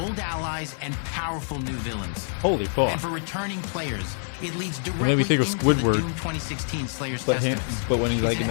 allies, and powerful new villains. Holy fuck. And for returning players, it leads It made directly me think of into the Squidward. Doom 2016 Slayer's But him, Testaments. but when he's like It's in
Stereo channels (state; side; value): silent; right; digital silence